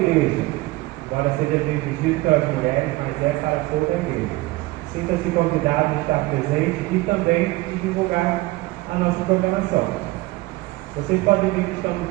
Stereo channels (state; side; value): quieter; left; 20.4 dB